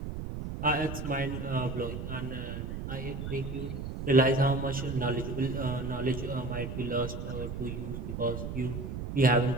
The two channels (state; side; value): noise; right; rumble, 6 dB below the sound